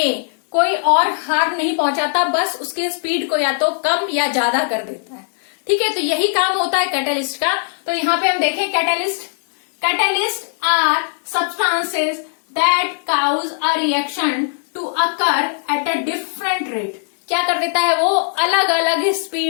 कोई और हार्म नहीं पहुंचाता, बस उसके स्पीड को या तो कम या ज्यादा कर देता है। ठीक है, तो यही काम होता है कैटलिस्ट का। तो यहाँ पे हम देखें catalyst are substances that cause a reaction to occur at a different rate. क्या कर देता है, वो अलग अलग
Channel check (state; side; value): silent; right; 62 dB below the other